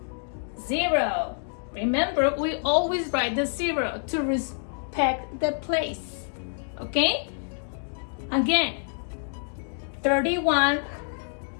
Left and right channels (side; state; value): right; silent; digital silence